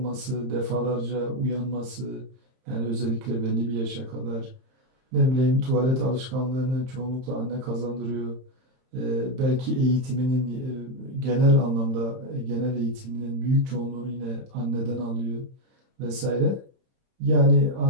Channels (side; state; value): left; late; 31 ms